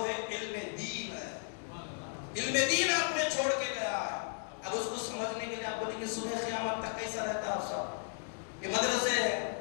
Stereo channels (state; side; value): silent; right; 54 dB below the other